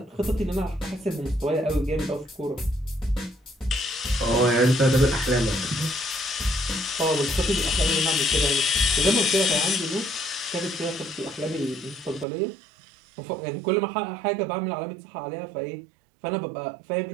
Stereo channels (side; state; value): left; drops out; at 12.2 s